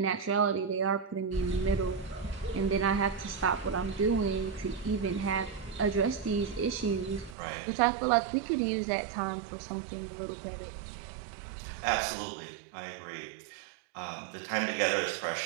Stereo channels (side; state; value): left; drops out; at 7.4 s